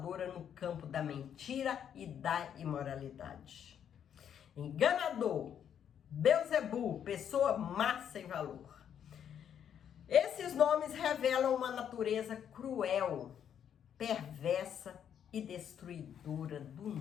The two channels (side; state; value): right; quieter; 8.9 dB